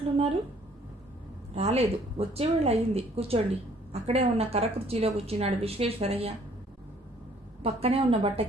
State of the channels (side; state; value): both; normal; correlation 0.60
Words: రాలేదు, వచ్చేవేళ అయింది. కూర్చోండి. అక్కడే ఉన్న కర్ర కుర్చీలో కూర్చున్నాడు విశ్వేశ్వరయ్య, పక్కనే ఉన్న